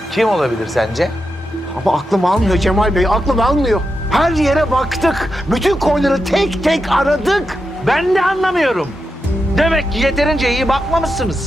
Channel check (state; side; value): normal; both; correlation 0.87